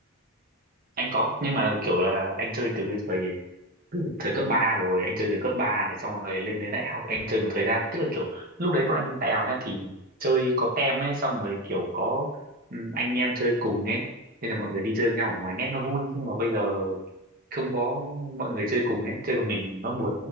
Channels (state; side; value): normal; both; correlation 0.20